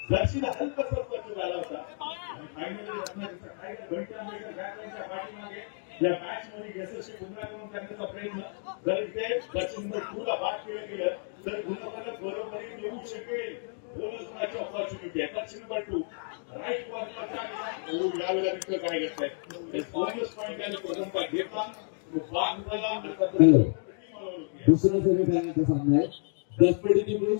जर्सीला हलकासा स्पर्श झाला होता या मॅच मध्ये यशस्वी पुन्हा करून करण्याचा प्रयत्न जर इथे दक्षिण पुढला भाग केलं गेलं तर गुणाला बरोबर येऊ शकेल. बोनस ऑपॉर्च्युनिटी आहे दक्षिण नंबर 2 राईट पॉइंटला यावेळेला तिथे काय घेतलंय बोनस पॉइंट त्यांनी प्रथमता घेतला दुसरा सेमीफायनलचा सामना आहे दसपडीची मिळून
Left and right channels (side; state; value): right; silent; 57 dB below the other